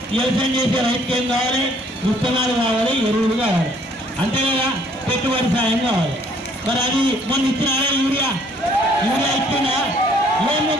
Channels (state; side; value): normal; both; correlation 0.62